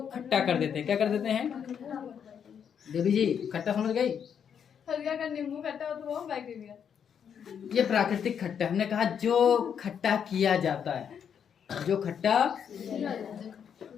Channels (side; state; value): right; quieter; 7.8 dB